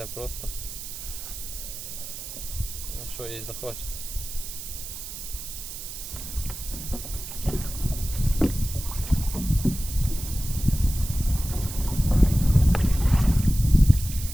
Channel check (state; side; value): noise; right; hiss, 9 dB below the sound